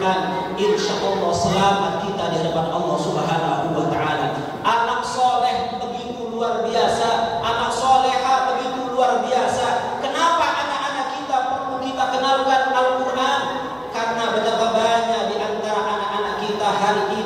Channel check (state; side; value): identical; both; correlation 1.00